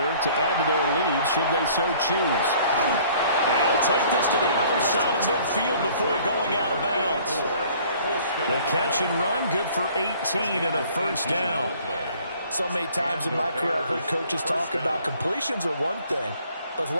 to add to their lead should they so choose. They'll take this to the other side of midfield before going out of bounds. The catch and run good for 18 and a 1st down. So many times in my career I've heard coaches talk about completions are one thing, but as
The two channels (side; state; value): both; inverted; correlation -0.55